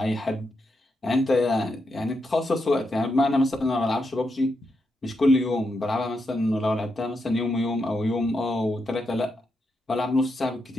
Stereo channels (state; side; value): normal; both; correlation 0.83